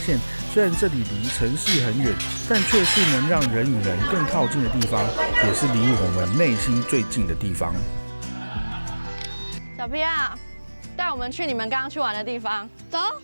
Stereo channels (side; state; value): both; inverted; correlation -1.00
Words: 雖然這裡離城市很遠，但卻是能讓人與人更靠近的地方，也是離我們內心最近的地方。小 P 啊，帶我們去你們剛剛去玩的地方。走。